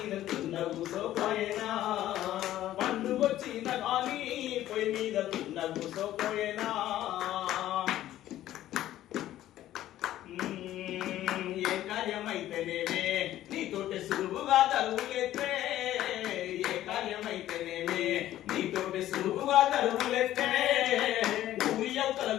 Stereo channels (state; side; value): quieter; right; 13.4 dB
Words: కుండ కూసోపోయేనా పండు వచ్చిన గాని పొయ్యి మీద కుండ కూసోపోయేనా ఏ కార్యమైతేనేమే నీతోటి సులువుగా తరువులెత్తే ఏ కార్యమైతేనేమే నీతోటి సులువుగా తరువులెత్తే ఊరి అవతల